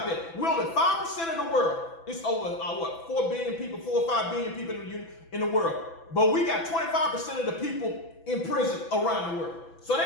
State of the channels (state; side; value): late; right; 6.0 ms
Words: that. We're only 5% of the world. It's over 4 billion people, 4 or 5 billion people in the world. But we got 25% of the people in prison around the world. So